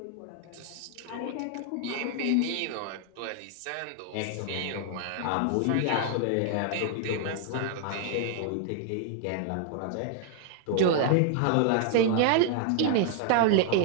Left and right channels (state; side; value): different; both; correlation 0.00